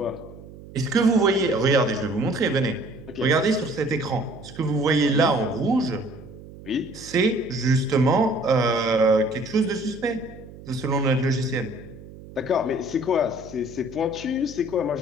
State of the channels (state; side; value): noise; right; hum, 17 dB below the sound